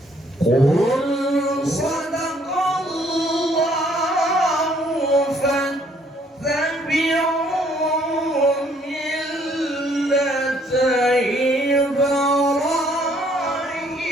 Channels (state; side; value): normal; both; correlation 0.65